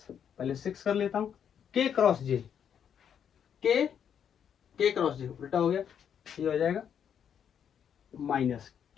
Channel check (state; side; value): quieter; right; 8.3 dB